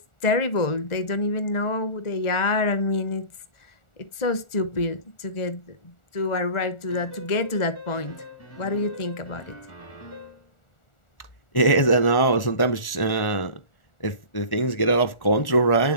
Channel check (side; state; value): right; late; 1.4 ms